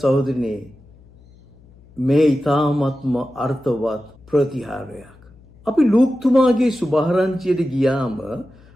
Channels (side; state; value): left; noise; hum, 26 dB below the sound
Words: මේ ඊ타ත්ම අර්ථවත් ප්‍රතිහාරයක්. අපි ලූක්තුමාගේ සුභාරංචියට ගියාම